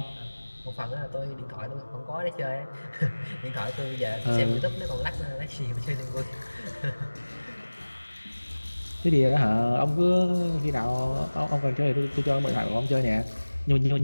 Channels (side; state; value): both; inverted; correlation -1.00